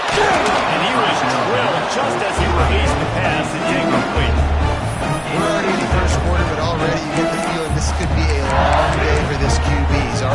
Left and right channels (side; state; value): both; identical; correlation 1.00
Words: And he was drilled just as he released the pass. It's incomplete. We're already in the first quarter, but already you get the feeling this could be a long day for this QB. He's